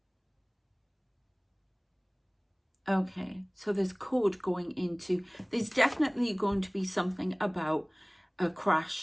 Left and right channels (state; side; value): identical; both; correlation 1.00